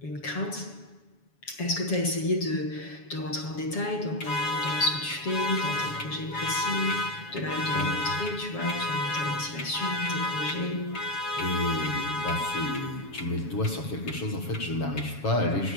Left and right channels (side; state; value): right; late; 7.2 ms